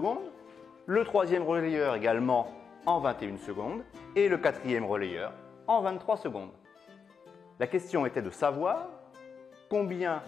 le troisième relayeur également en 21 secondes et le quatrième relayeur en 23 secondes. La question était de savoir combien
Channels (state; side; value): quieter; right; 6.1 dB